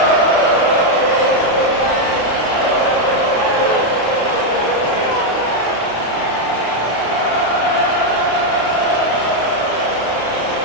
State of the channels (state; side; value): late; right; 33 ms